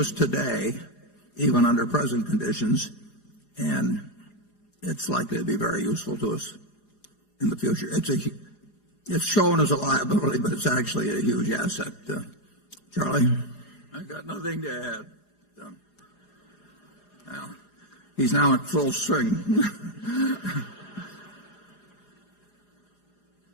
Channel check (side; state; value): right; late; 4.9 ms